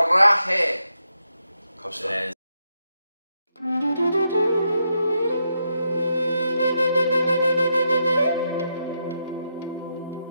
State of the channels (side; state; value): both; inverted; correlation -0.82